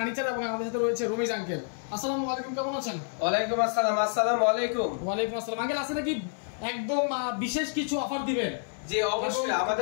এবং আমাদের সাথে রয়েছে রমিজ আঙ্কেল। আসসালামু আলাইকুম, কেমন আছেন? ওয়ালাইকুম আসসালাম। আসসালামু আলাইকুম। ওয়ালাইকুম আসসালাম। আঙ্কেল আছে নাকি একদম বিশেষ কিছু অফার দিবেন? জি অবশ্যই,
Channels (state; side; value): silent; right; 59 dB below the other